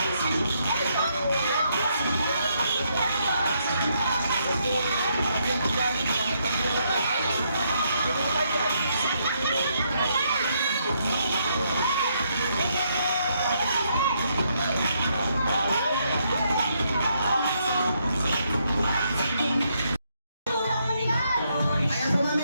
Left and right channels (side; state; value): both; inverted; correlation -0.75